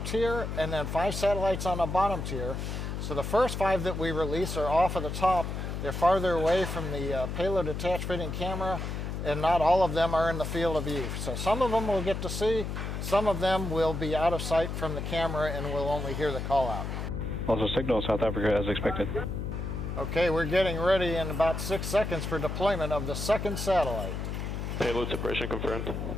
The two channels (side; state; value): left; noise; hum, 4 dB below the sound